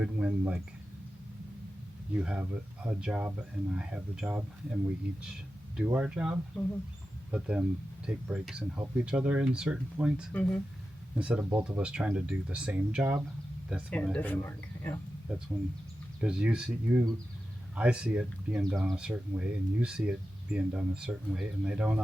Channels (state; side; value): normal; both; correlation 0.92